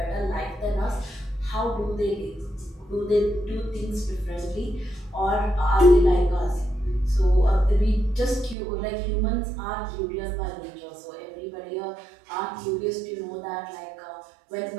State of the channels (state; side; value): drops out; left; at 8.6 s